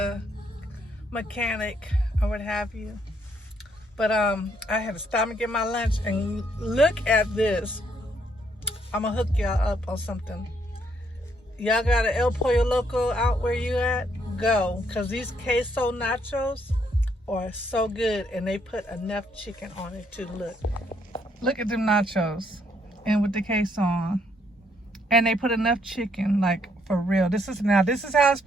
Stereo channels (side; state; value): both; normal; correlation 0.71